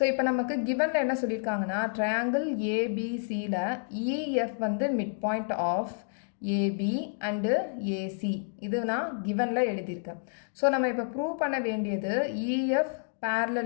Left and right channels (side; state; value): right; silent; digital silence